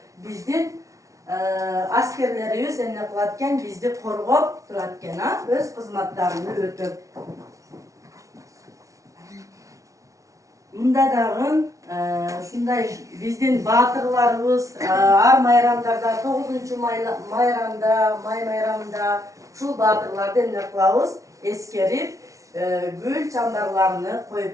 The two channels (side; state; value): left; late; 0.16 ms